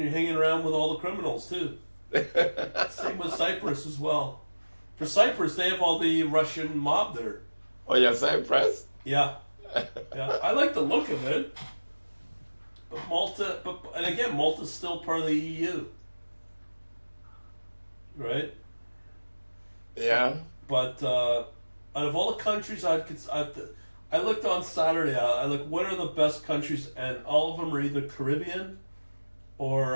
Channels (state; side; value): inverted; both; correlation -1.00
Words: hanging around with all the criminals too. Same with Cyprus as well. For Cyprus, they have all the Russian mob there. Oh, yeah, Cyprus? Yeah, I like the look of it. But Malta, and again, Malta's still part of the EU, right? Yeah. But out of all the countries I looked on Saturday. I looked what are the best countries, and all of them are either Caribbean